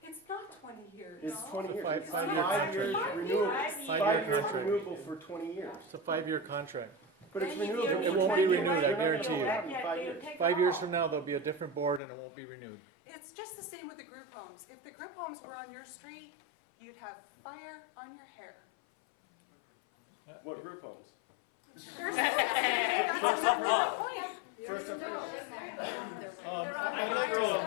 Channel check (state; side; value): drops out; right; at 12.0 s